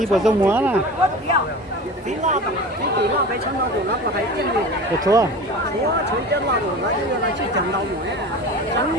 bờ sông múa nè. Được chưa?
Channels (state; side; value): normal; both; correlation 0.34